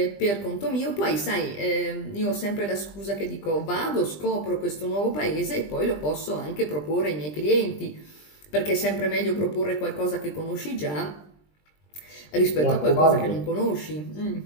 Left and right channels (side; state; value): right; late; 20 ms